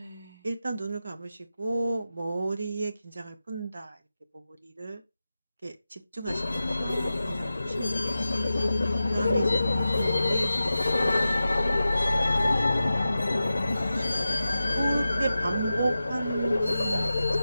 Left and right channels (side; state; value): both; inverted; correlation -0.93